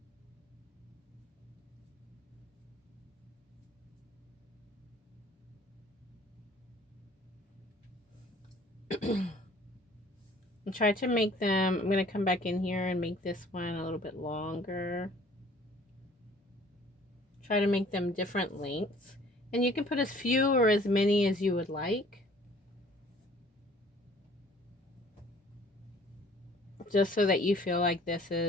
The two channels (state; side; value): normal; both; correlation 0.54